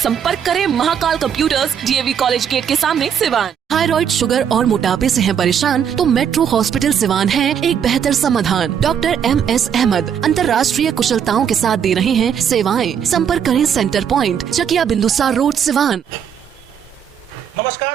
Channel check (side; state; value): left; quieter; 8.2 dB